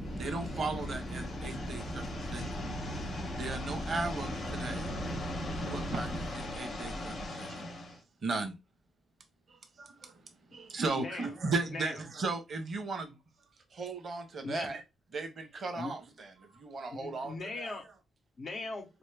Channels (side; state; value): both; normal; correlation 0.76